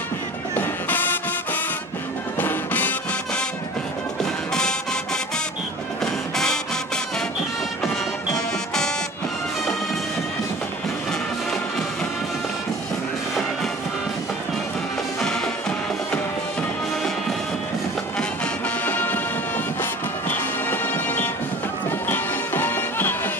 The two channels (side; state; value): both; normal; correlation 0.42